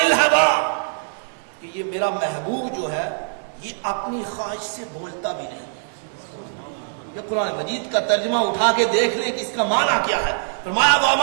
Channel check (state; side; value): silent; left; 64 dB below the other